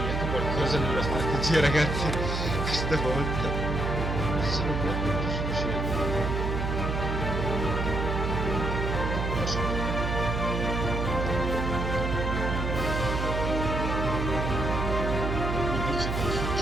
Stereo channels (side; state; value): right; noise; hum, 1 dB below the sound